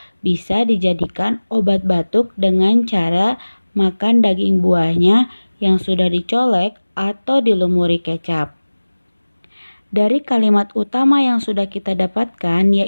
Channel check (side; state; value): both; inverted; correlation -1.00